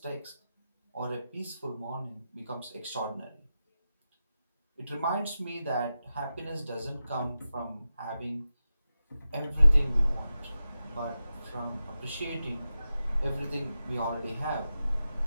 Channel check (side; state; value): both; inverted; correlation -0.91